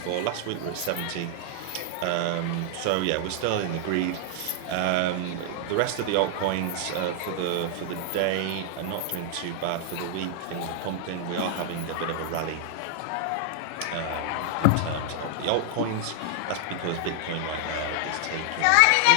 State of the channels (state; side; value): different; both; correlation -0.01